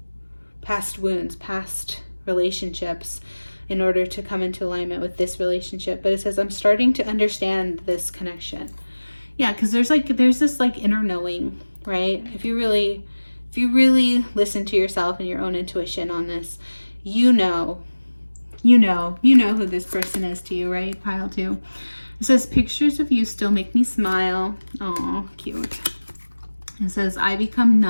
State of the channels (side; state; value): both; inverted; correlation -1.00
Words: wounds, past relationships, in order to come into alignment with this relationship. But it says, I'm starting to understand this connection. Yeah, because there's this like inner knowing, right? If you really listen to yourself and your own intuition on this, you know who this person is to you, right? Pile 2. It says, pictures of you still make me smile. Oh, cute. It says, I become